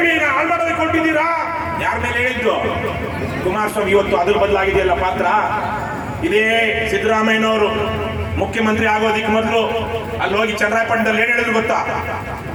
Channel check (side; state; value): both; identical; correlation 1.00